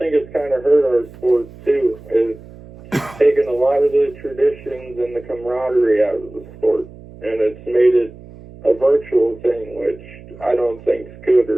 it's kind of hurt our sport, too. It's taken a lot of the traditions and the camaraderie out of the sport, and it's made it a virtual thing, which I don't think is good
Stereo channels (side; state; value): right; noise; hum, 19 dB below the sound